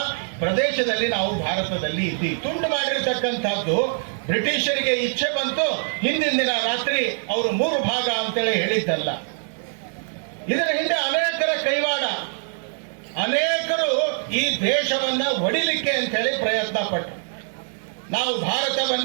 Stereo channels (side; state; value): left; silent; 63 dB below the other